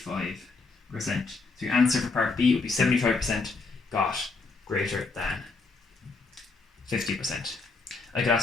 So your answer for part B would be 75% got greater than 50%. I could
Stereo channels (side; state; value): right; quieter; 4.0 dB